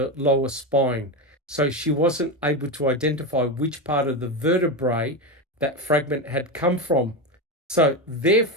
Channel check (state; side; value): normal; both; correlation 0.15